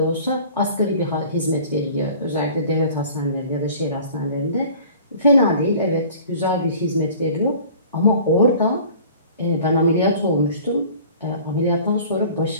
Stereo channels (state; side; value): inverted; both; correlation -0.46